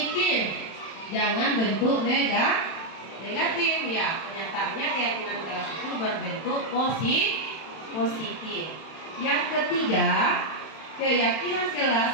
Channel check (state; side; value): late; right; 31 ms